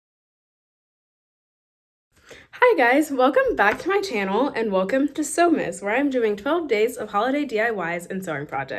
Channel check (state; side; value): identical; both; correlation 1.00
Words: Hi guys, welcome back to my channel and welcome to Sewmas, where I'm doing 12 days of holiday DIYs and sewing